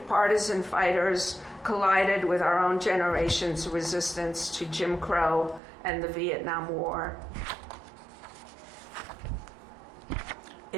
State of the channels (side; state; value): left; drops out; at 5.6 s